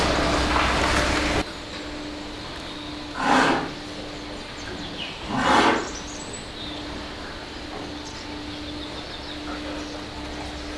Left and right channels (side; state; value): both; identical; correlation 1.00